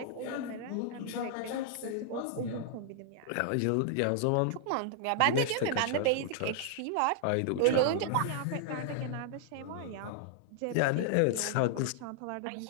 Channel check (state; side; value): different; both; correlation -0.01